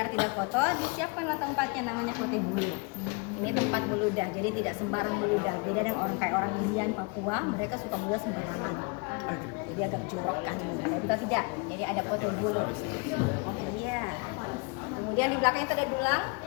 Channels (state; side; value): quieter; right; 30.3 dB